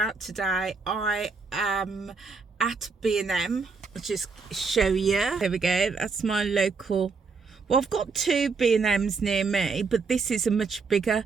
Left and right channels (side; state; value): left; quieter; 4.7 dB